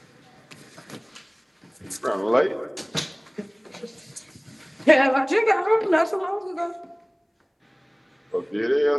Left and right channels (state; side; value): identical; both; correlation 1.00